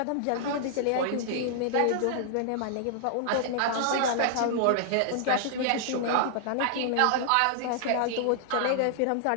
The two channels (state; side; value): different; both; correlation -0.01